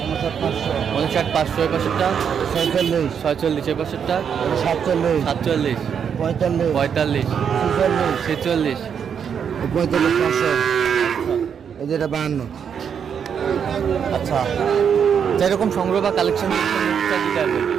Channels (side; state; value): left; quieter; 7.5 dB